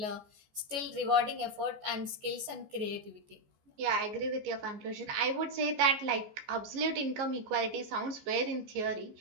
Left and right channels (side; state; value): left; late; 14 ms